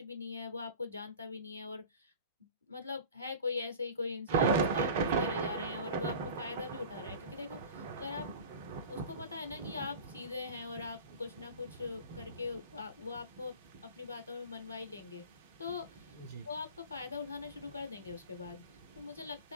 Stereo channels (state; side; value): inverted; both; correlation -0.38